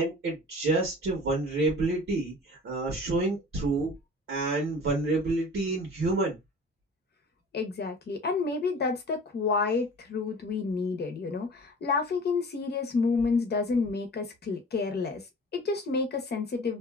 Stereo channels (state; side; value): normal; both; correlation 0.42